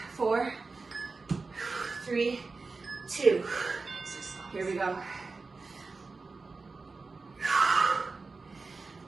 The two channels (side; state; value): left; quieter; 4.0 dB